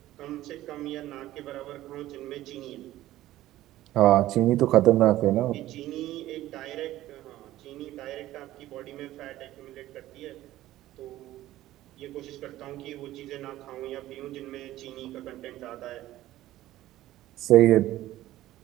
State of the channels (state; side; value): quieter; left; 15.0 dB